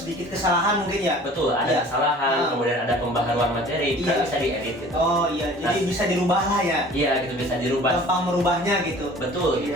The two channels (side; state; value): both; normal; correlation 0.47